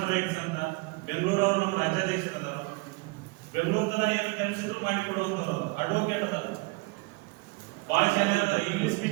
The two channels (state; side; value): quieter; left; 27.0 dB